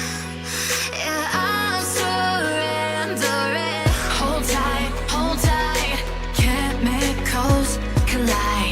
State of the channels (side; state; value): both; identical; correlation 1.00